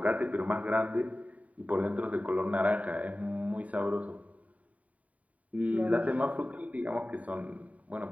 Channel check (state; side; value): late; left; 0.069 ms